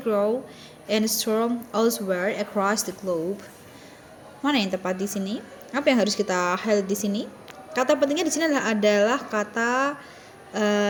and storm elsewhere across the globe. Mana yang tepat di sini? Apa yang harus kita highlight di sini? Kata pentingnya di sini adalah kata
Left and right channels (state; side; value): identical; both; correlation 1.00